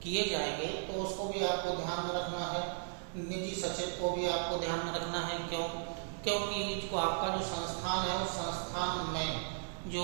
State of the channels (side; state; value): left; silent; 54 dB below the other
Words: किए जाएंगे, तो उसको भी आपको ध्यान में रखना है। निजी सचिव को भी आपको ध्यान में रखना है। क्योंकि जो आपका जो संस्थान है उस संस्थान में जो